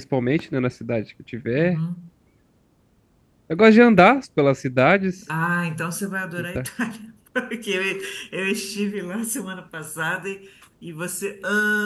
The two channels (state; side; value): identical; both; correlation 1.00